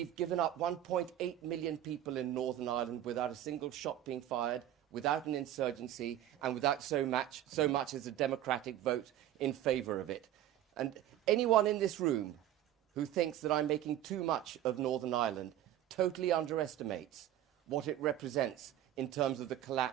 given up 1.8 million people in Northern Ireland without a single shot being fired, without an insurgency, and without so much as a democratic vote in favour of it. And anyone in this room who thinks that I'm making too much of Northern Ireland totally underestimates what it represents in terms of the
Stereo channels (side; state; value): left; quieter; 12.2 dB